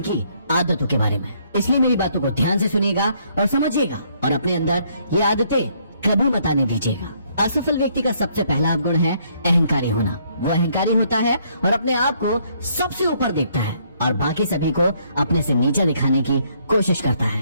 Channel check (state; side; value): inverted; both; correlation -0.68